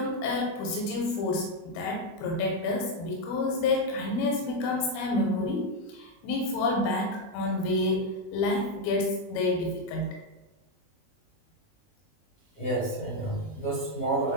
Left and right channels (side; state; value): right; late; 20 ms